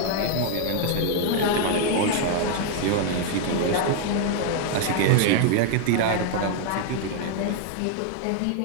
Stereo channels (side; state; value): both; different; correlation 0.00